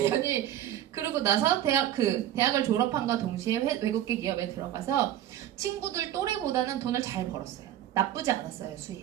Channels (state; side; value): quieter; left; 11.8 dB